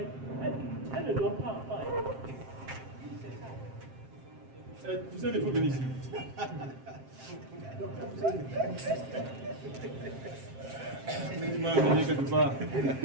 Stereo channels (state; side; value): late; left; 7.6 ms